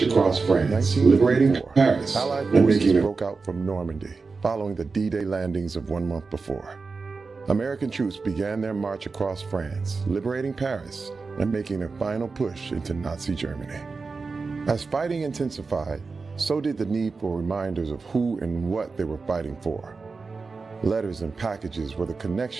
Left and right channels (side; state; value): left; quieter; 4.4 dB